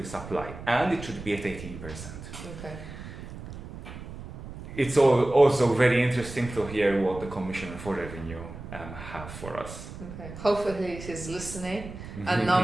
supply, and it should be at 18%. Okay. It's also very interesting to hear what the Commissioner for Revenue have for us. Okay. Hopefully he's listening, and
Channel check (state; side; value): noise; right; rumble, 12 dB below the sound